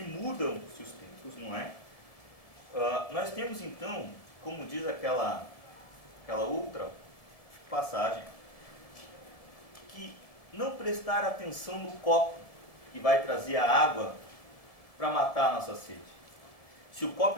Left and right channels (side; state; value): right; late; 1.7 ms